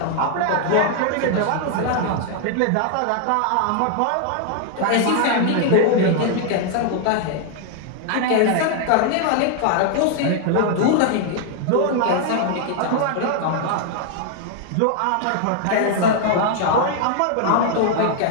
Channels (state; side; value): different; both; correlation 0.00